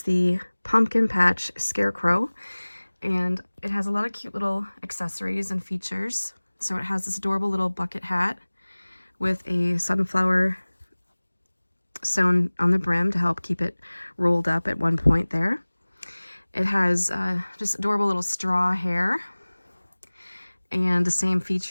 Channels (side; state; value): both; inverted; correlation -1.00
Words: the Pumpkin Patch Scarecrow, and it has a lot of cute little accessories and features. So it has this adorable little bucket hat with a sunflower sewn on the brim to help keep it rolled up at one point there. It has just adorable little straw hair, and the same